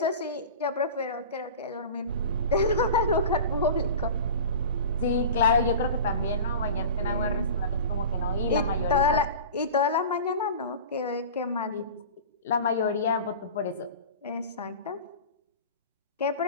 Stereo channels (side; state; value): both; inverted; correlation -0.35